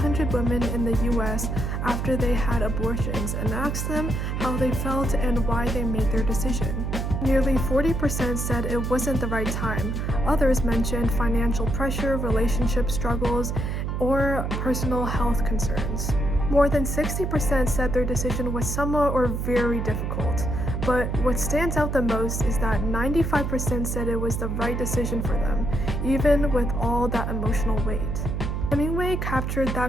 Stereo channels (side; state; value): right; noise; hum, 2 dB below the sound